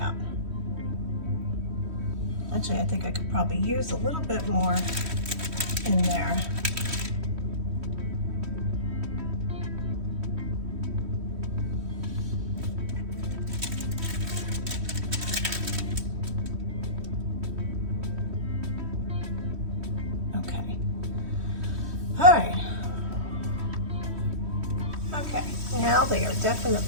Actually, I think I could probably use a little bit more in there. Okay. All right. Okay, now they are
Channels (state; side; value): late; left; 3.1 ms